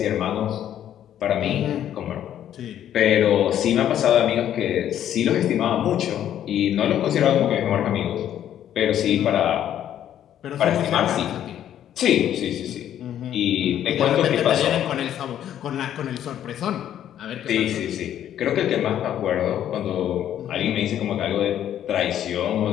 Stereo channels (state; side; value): quieter; right; 10.7 dB